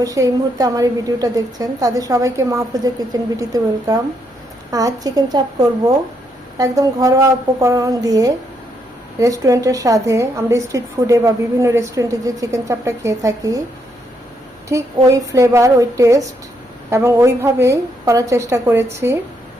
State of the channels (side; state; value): both; normal; correlation 0.76